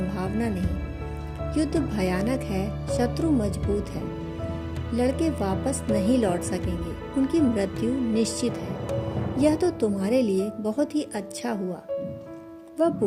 नहीं। युद्ध भयानक है, शत्रु मजबूत है, लड़के वापस नहीं लौट सकेंगे, उनकी मृत्यु निश्चित है। यह तो तुम्हारे लिए बहुत ही अच्छा हुआ। वह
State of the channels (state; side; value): identical; both; correlation 1.00